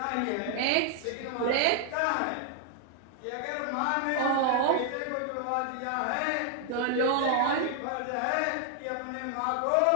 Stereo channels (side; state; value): both; different; correlation 0.00